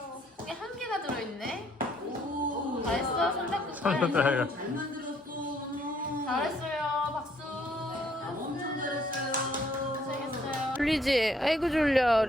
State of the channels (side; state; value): both; normal; correlation 0.65